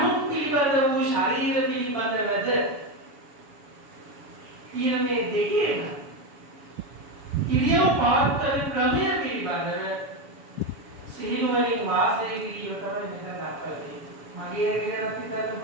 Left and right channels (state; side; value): late; left; 7.1 ms